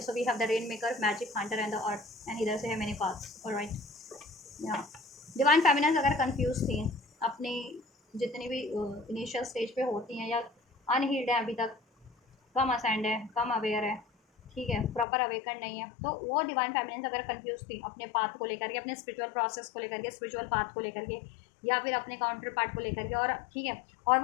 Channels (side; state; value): right; drops out; at 15.1 s